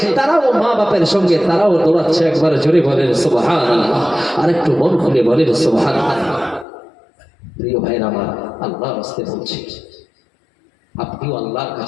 তারাও মা বাপের সঙ্গে তারাও দৌড়াচ্ছে। একবার জোরে বলেন সুবহানাল্লাহ, আর একটু মন খুলে বলেন সুবহানাল্লাহ। প্রিয় ভাইরা আমার, আল্লাহর রাস্তে বলছি, আপনিও আল্লাহর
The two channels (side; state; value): right; drops out; at 6.7 s